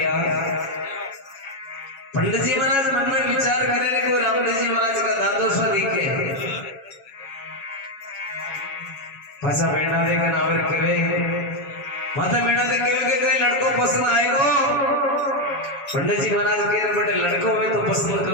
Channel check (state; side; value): late; right; 7.3 ms